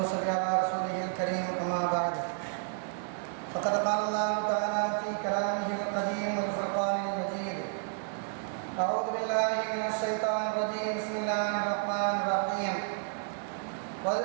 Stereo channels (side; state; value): left; silent; digital silence